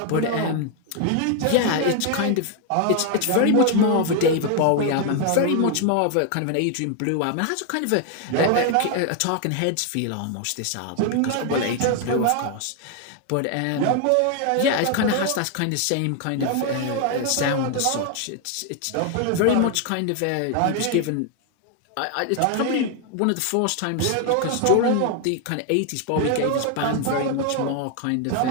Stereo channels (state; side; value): different; both; correlation 0.00